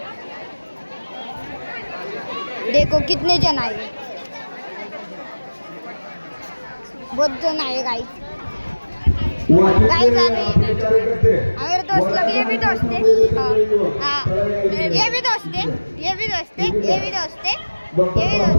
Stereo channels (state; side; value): inverted; both; correlation -1.00